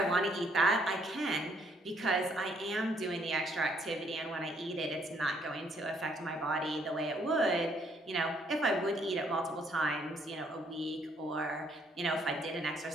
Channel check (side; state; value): both; normal; correlation 0.68